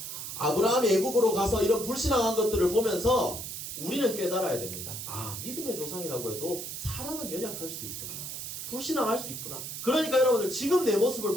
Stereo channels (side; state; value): right; noise; hiss, 7 dB below the sound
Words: 아브라함이 애굽으로 가서 이런 불신앙한 것들을 보면서 우리는 깨달아야 됩니다. 믿음의 조상이라고 해도 사람은 연약할 수 있구나. 불신앙할 수 있구나. 그러니까 여러분들 지금 내 모습을